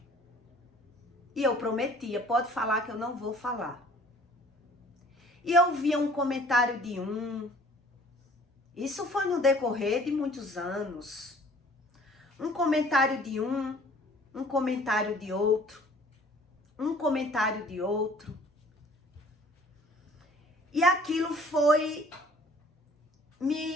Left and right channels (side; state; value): both; normal; correlation 0.53